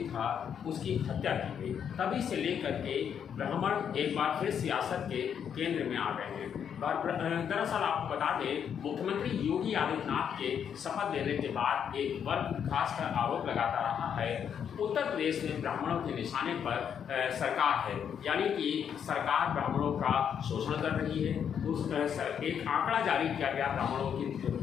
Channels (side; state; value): right; quieter; 8.1 dB